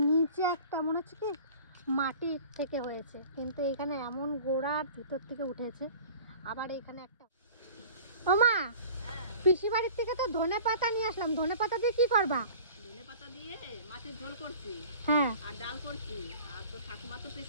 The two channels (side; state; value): both; inverted; correlation -0.44